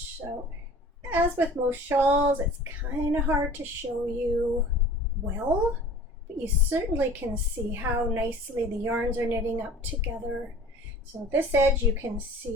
So as with most shawls, it's kind of hard to show you well, but you certainly can see how nicely the yarns are knitting up together. So this edge you can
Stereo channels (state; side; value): normal; both; correlation 0.44